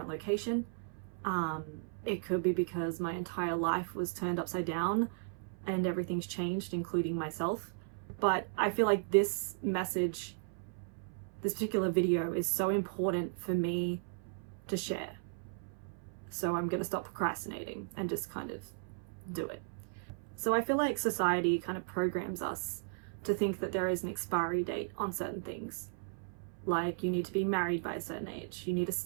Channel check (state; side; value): silent; left; 54 dB below the other